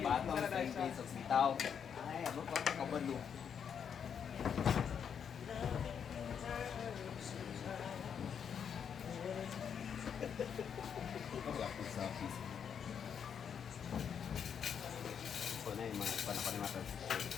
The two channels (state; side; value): quieter; right; 7.6 dB